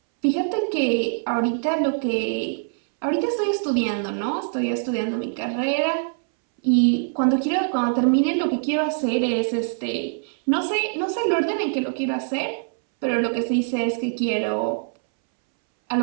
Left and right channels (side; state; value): left; silent; 63 dB below the other